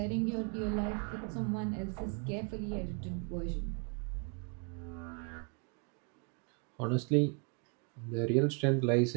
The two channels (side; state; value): left; quieter; 37.1 dB